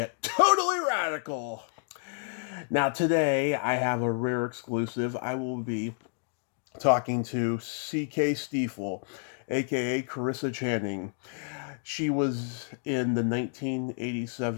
totally radical. Now today I have a rare exclusive. I will be talking to C.K. Steefel, aka Carissa Channing. She was in the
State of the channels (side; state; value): right; silent; 58 dB below the other